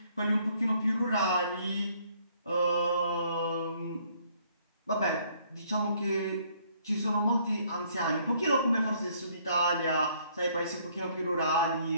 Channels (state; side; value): inverted; both; correlation -0.64